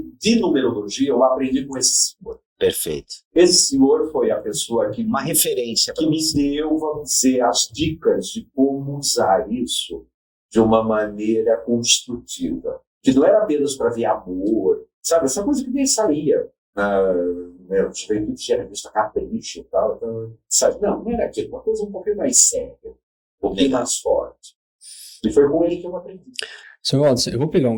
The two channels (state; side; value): identical; both; correlation 1.00